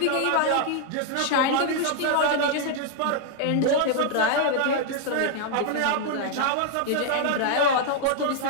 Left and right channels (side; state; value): both; different; correlation 0.00